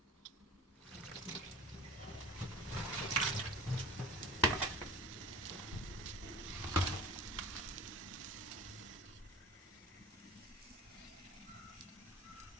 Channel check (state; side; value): normal; both; correlation 0.40